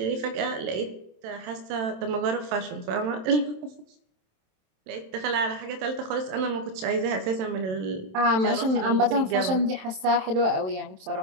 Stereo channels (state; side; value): late; left; 27 ms